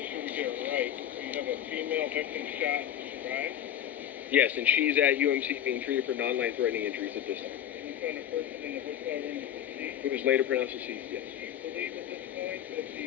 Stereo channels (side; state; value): right; quieter; 10.5 dB